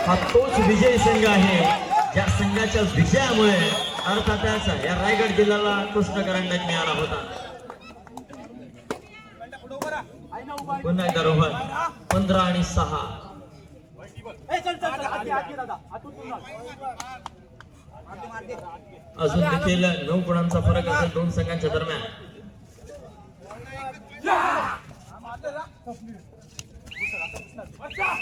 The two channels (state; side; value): identical; both; correlation 1.00